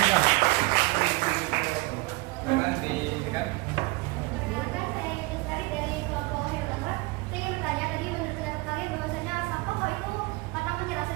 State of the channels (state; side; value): quieter; left; 23.8 dB